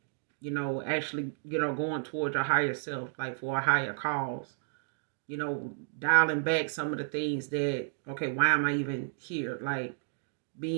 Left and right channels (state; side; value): silent; left; digital silence